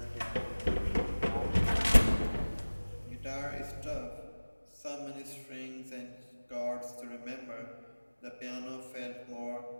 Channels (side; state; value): both; inverted; correlation -1.00